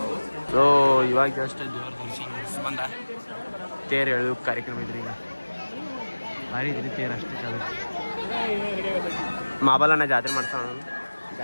ಸೊ ಇವಾಗ ಜಸ್ಟ್ ದೇವ್ರ ದರ್ಶನ ಬಂದ ತೇರು ಎಳೆದು ಕಾರ್ಯಕ್ರಮ ಇದ್ರಿ ಈಗ ಭಾರಿ ಇದ್ರಿ ತೇರು ಅಷ್ಟೇ ಚಲೋ ಮಾಬಲನ್ನ ಜಾತ್ರೆ ಮಾಡ್ಸೋಣ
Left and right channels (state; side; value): inverted; both; correlation -1.00